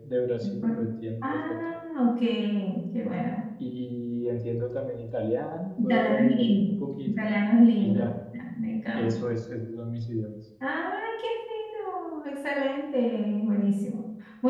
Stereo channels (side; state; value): both; identical; correlation 1.00